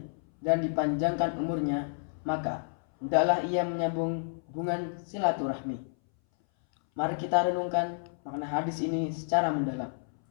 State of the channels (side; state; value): right; silent; 58 dB below the other